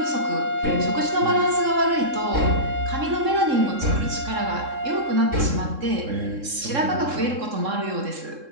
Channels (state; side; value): late; left; 3.7 ms